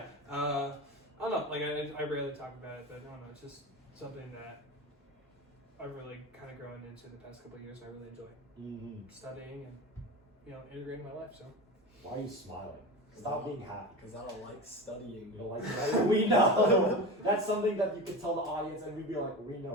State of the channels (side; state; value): both; normal; correlation 0.26